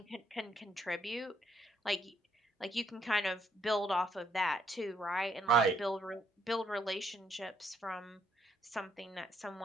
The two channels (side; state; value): both; normal; correlation 0.72